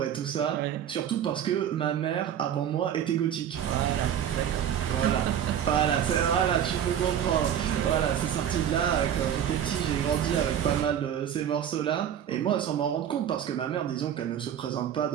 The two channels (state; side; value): quieter; left; 9.6 dB